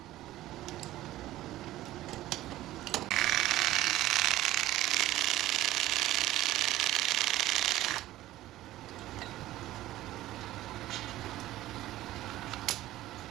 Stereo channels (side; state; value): left; quieter; 15.3 dB